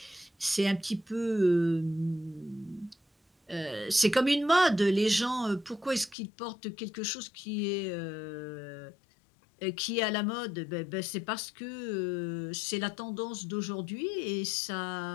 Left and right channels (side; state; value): right; drops out; at 6.2 s